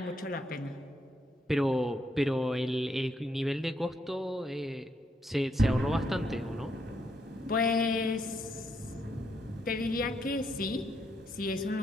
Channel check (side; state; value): both; normal; correlation 0.77